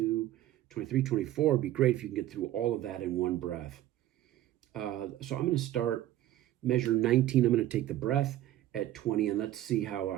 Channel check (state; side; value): quieter; left; 13.7 dB